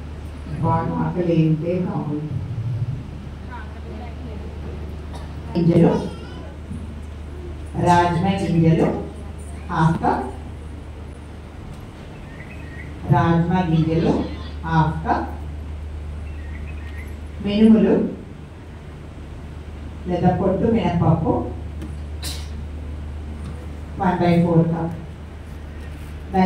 బాగా ఆకలి ఏంటే బాగుంది. గింజలు, రాజ్మా గింజలు హాఫ్ కప్, రాజ్మా గింజలు హాఫ్ కప్, మినుములు లేదా పొట్టు మినపప్పు 1/4 కప్.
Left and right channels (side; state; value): both; identical; correlation 1.00